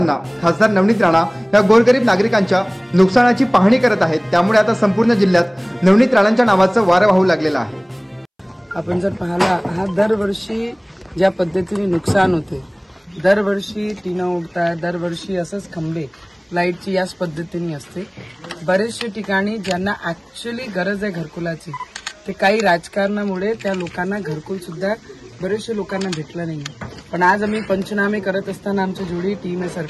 खासदार नवनीत राणा या गोरगरीब नागरिकांच्या नुकसानाची पाहणी करत आहेत, त्यामुळे आता संपूर्ण जिल्ह्यात नवनीत राणांच्या नावाचं वारं वाहू लागलेलं आहे। आपण जर पाहिला हा दरवर्षी ज्या पद्धतीने नुकसान होते, दरवर्षी टीना उडतात, दरवर्षी असंच खंबे लाईटची याच पद्धतीने असते। बरेचशे ठिकाणी ज्यांना ऍक्च्युअली गरज आहे घरकुलाची, ते काही राजकारणामुळे त्या लोकांना घरकुल सुद्धा बरेचशे लोकांना भेटलं नाही। पण आज आम्ही पंचनामे करत असताना आमची जोडी टीम आहे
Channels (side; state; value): both; identical; correlation 1.00